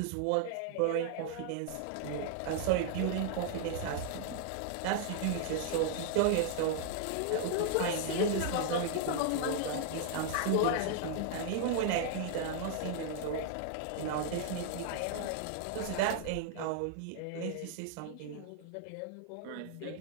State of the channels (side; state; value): both; different; correlation 0.00